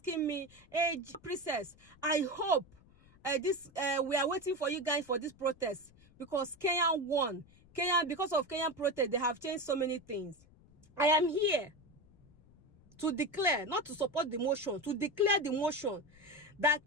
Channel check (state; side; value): noise; left; rumble, 27 dB below the sound